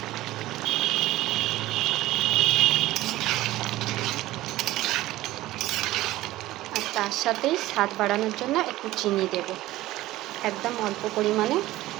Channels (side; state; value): left; quieter; 16.5 dB